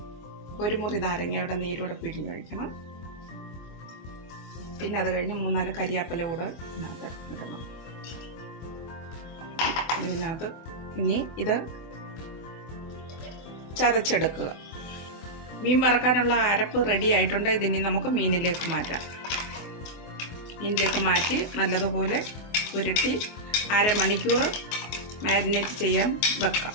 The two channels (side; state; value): right; late; 24 ms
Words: ഒരു മുറി നാരങ്ങയുടെ നീരൂടെ പിഴിഞ്ഞൊഴിക്കണം. പിന്നെ അത് കഴിഞ്ഞ് 3-4 കരിയാപ്പില കൂടെ ഇതിനകത്ത് ഇടണം. ഇതിനകത്ത് ഇനി ഇത് ചതച്ചെടുക്കുക. മീൻ വറക്കാനുള്ള അരപ്പ് റെഡി ആയിട്ടുണ്ട്. ഇതിനി നമുക്ക് മീനിലേക്ക് മാറ്റാം. മീനിലേക്ക് മാറ്റി നല്ലതുപോലെ പുരട്ടി അരമണിക്കൂർ മാരിനേറ്റ് ചെയ്യാൻ വെക്കാം.